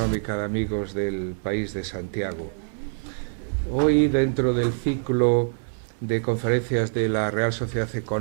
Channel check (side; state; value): left; silent; digital silence